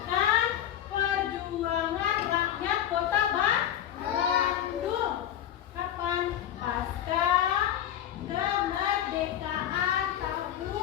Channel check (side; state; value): right; quieter; 10.9 dB